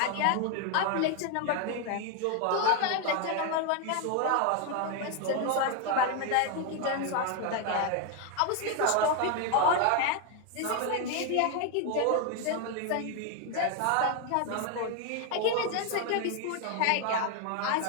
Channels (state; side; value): different; both; correlation 0.01